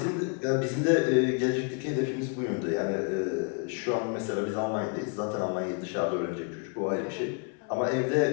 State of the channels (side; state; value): right; quieter; 37.6 dB